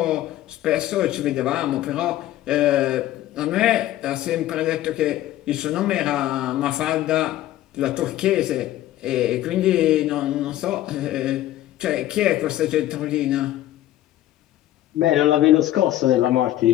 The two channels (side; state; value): right; quieter; 14.0 dB